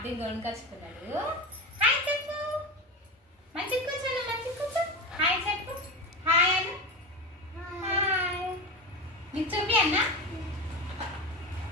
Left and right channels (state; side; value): normal; both; correlation 0.22